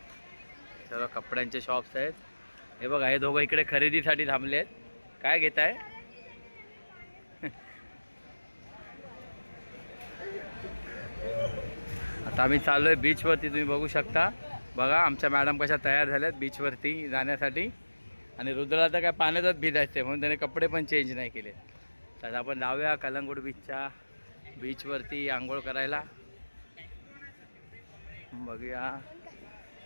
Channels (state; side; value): inverted; both; correlation -1.00